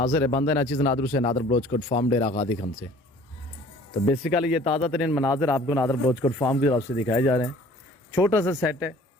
है बंदा नाचिज़ नादर से नादर ब्लोचकोट फार्म डेरा गादी खन से। तो बेसिकली ये ताज़ा तरीन मनाजिर आपको नादर ब्लोचकोट फार्म की तरफ से दिखाए जा रहे हैं। छोटा सा सेट है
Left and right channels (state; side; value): normal; both; correlation 0.51